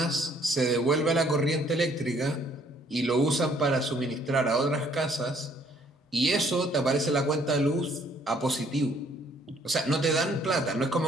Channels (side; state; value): both; normal; correlation 0.63